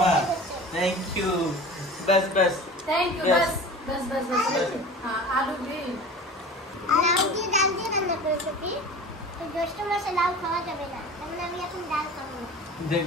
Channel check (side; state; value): both; normal; correlation 0.38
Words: थैंक यू बस बस थैंक यू। Yes. बस बस बस बस। हाँ आलू भी। লাউ দিয়ে ডাল দিয়ে রান্না করেছে কি? তো জ্যৈষ্ঠ মাসে লাউ খাওয়া যাবে না, তাহলে আমি এখন ডাল খাবো না। देख